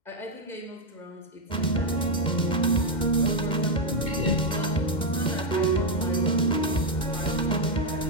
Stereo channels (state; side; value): late; right; 2.1 ms